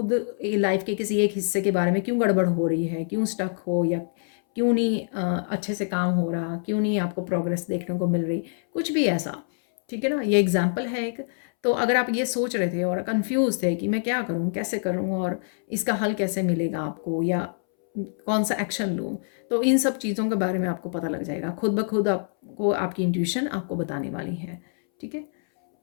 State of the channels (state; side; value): silent; right; 61 dB below the other